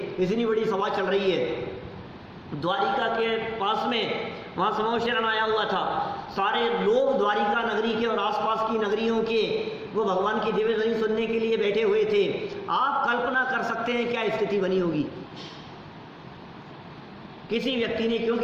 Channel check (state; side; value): identical; both; correlation 1.00